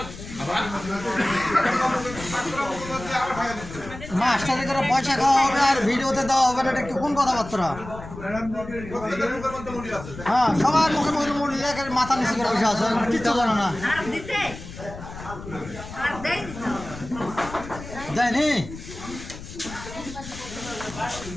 মাস্টারে করে পয়সা খাওয়া হবে আর ভিডিওতে দেওয়া হবে না, এটা কোন কথাবার্তা? হ্যাঁ, সবার মুখে মুখে মাথা নিচে করে বসে আছে, কিচ্ছু জানো না। যায়নি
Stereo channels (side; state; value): left; noise; rumble, 13 dB below the sound